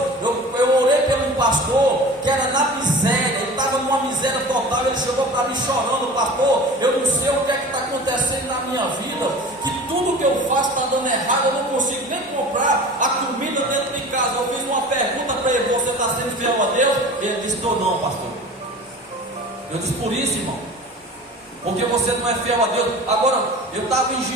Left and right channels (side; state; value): both; normal; correlation 0.38